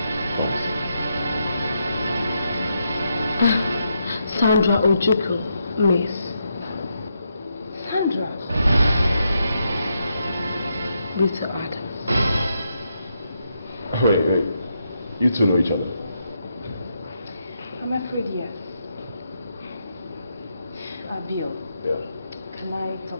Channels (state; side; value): inverted; both; correlation -0.81